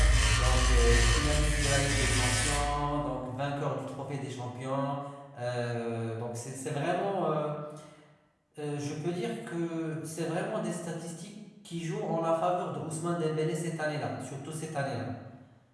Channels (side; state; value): both; identical; correlation 1.00